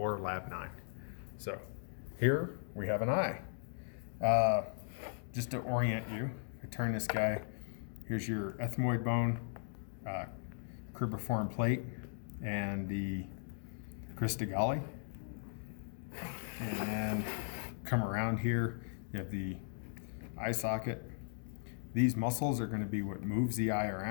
Lab 9. So here we have an eye. Just to orient you, I turn this guy, here's your ethmoid bone, cribriform plate, and the crista galli. And then come around here, you have the eye socket. These muscles are going to be what moves the eye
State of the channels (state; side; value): silent; right; digital silence